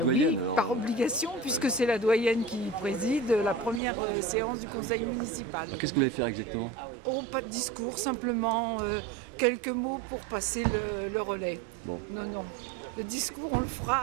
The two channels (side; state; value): left; drops out; at 3.8 s